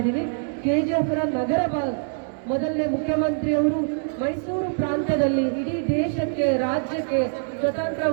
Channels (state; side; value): silent; left; 62 dB below the other